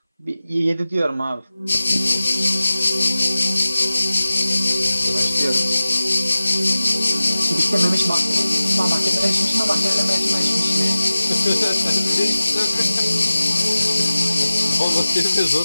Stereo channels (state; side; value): inverted; both; correlation -0.96